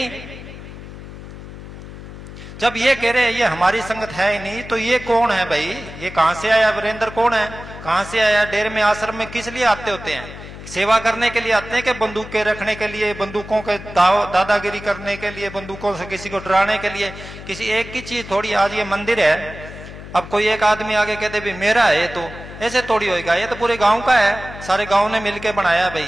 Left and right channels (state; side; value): noise; left; hum, 13 dB below the sound